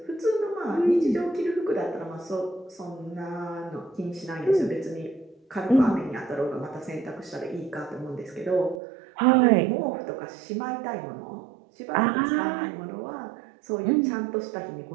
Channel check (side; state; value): left; drops out; at 8.8 s